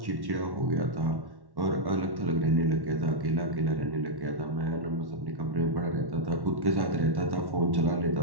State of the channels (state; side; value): late; left; 1.1 ms